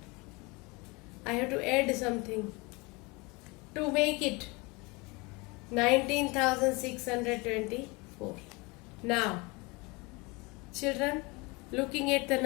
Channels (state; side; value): quieter; right; 26.4 dB